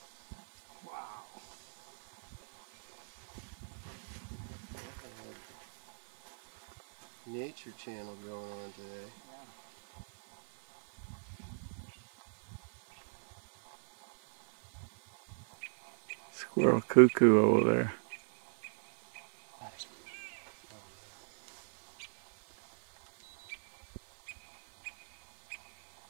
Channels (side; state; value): left; silent; digital silence